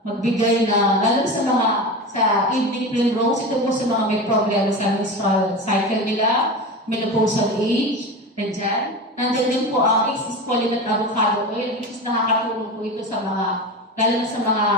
magbigay na, lalo sa mga sa evening primrose, ito po sa mga may problem sa menstrual cycle nila, menopausal age, and dyan. Nandiyan din po ang exfoliant avocado oil, which is nakakatulong po ito sa mga, lalo na sa mga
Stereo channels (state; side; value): normal; both; correlation 0.26